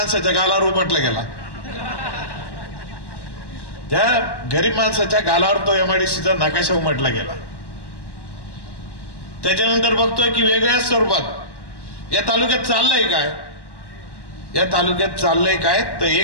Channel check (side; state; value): right; late; 1.1 ms